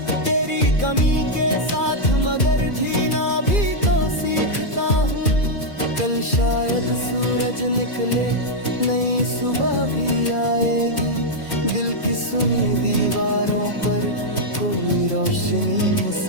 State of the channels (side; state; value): right; late; 2.4 ms